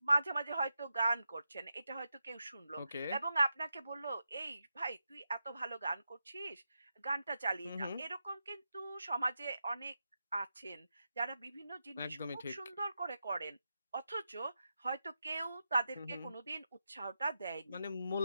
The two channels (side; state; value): both; inverted; correlation -0.88